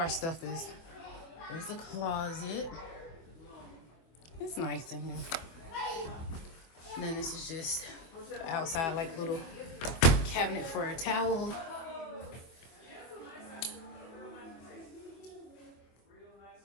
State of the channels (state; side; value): late; right; 25 ms